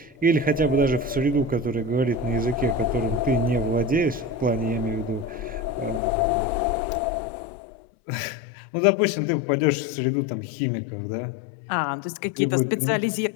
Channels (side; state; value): right; drops out; at 6.0 s